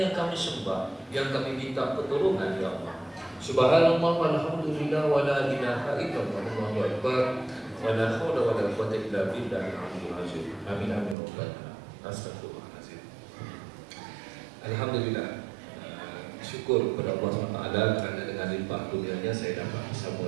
yang kami sembah, yang kami minta pertolongan ya Allah. Subhanallah walhamdulillah wa la ilaha illallah wallahu akbar wa la haula wa la quwwata illa billahil aliyyil azim. Amin amin rabbana. Astagfirullahalazim. Alhamdulillah. Syukur kepada Allah SWT kerana dengan limpah kurnianya saya dapat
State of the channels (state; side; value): drops out; left; at 11.2 s